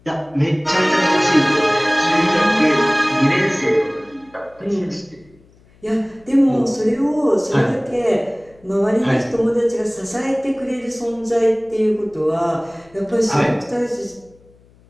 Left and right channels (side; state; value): left; noise; hum, 29 dB below the sound